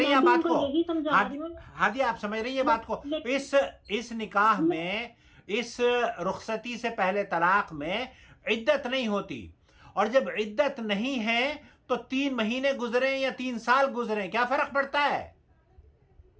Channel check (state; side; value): identical; both; correlation 1.00